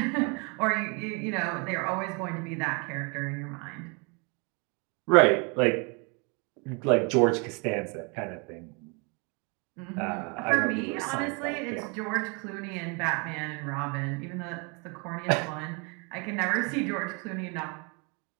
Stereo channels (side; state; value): left; quieter; 32.5 dB